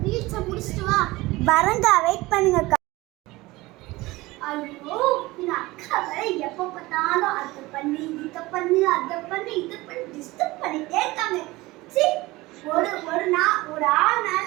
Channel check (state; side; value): quieter; left; 20.3 dB